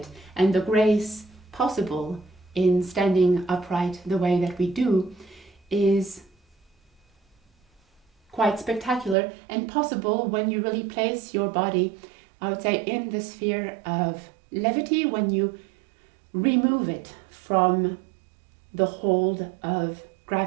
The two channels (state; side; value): drops out; left; at 9.2 s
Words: and the grace possible in standing upright the way that we do, is quite spectacular and possible when you really place your body, I would say, in the sphere of levity, when you remove it from the hold of